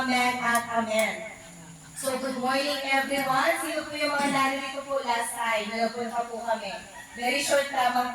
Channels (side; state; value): both; identical; correlation 1.00